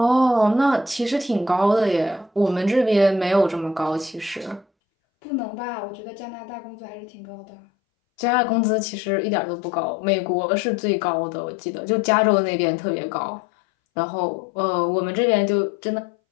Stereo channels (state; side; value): drops out; right; at 4.7 s